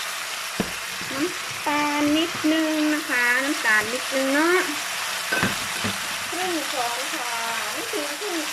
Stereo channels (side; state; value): both; identical; correlation 1.00